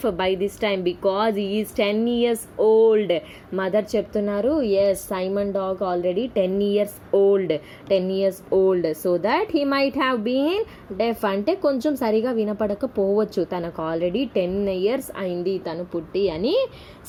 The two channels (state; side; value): identical; both; correlation 1.00